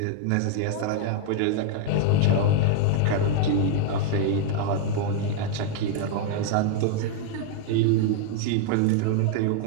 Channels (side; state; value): both; different; correlation 0.00